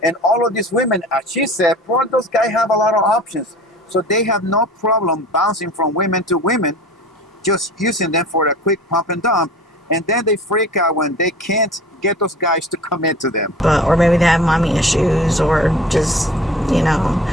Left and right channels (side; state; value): both; normal; correlation 0.43